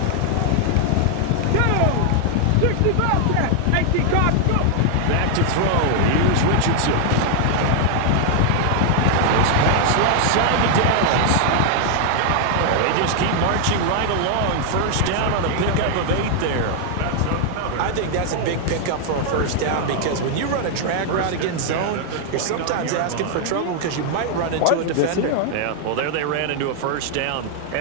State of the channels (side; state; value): both; different; correlation 0.00